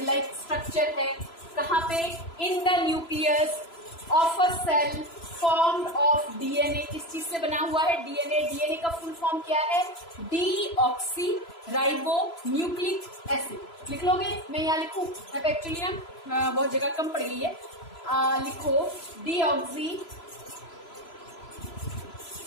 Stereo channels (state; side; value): late; right; 3.0 ms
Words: लाइक स्ट्रक्चर है। कहाँ पे, in the nucleus of a cell formed of DNA. किस चीज से बना हुआ है, डीएनए। डीएनए का फुल फॉर्म क्या है, डीऑक्सी राइबो न्यूक्लिक एसिड। लिख लोगे, मैं यहाँ लिखूं, अब एक्चुअली ना बहुत जगह कम पड़ गई है। लिखो डीऑक्सी